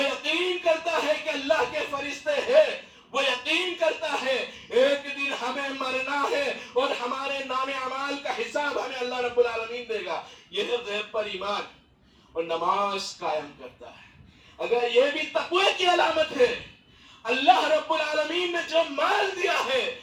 یقین کرتا ہے کہ اللہ کے فرشتے ہیں، وہ یقین کرتا ہے ایک دن ہمیں مرنا ہے اور ہمارے نام اعمال کا حساب ہمیں اللہ رب العالمین دے گا. یہ ہے غیب پر ایمان. اور نماز قائم کرتا ہے. اگر یہ بھی تقوی کی علامت ہے، اللہ رب العالمین نے جو مال دیا ہے،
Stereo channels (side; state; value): both; identical; correlation 1.00